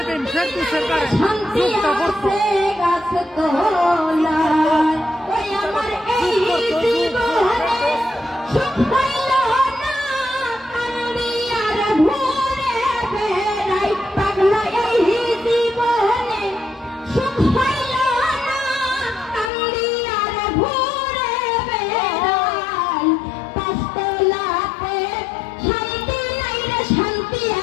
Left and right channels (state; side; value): drops out; right; at 19.5 s